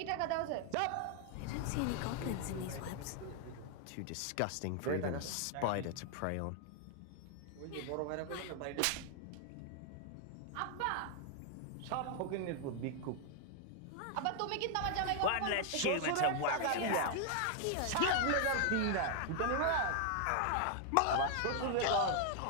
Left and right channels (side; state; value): both; different; correlation 0.00